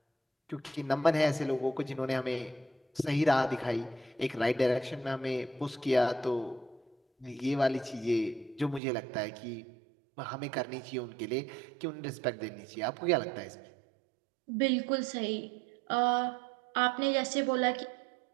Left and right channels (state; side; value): drops out; left; at 8.8 s